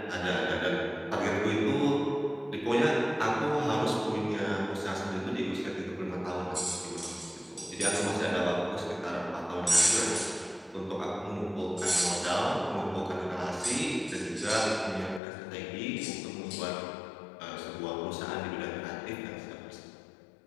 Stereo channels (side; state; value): right; drops out; at 15.2 s